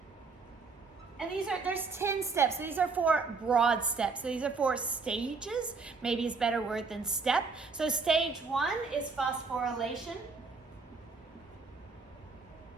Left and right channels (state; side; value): quieter; left; 4.4 dB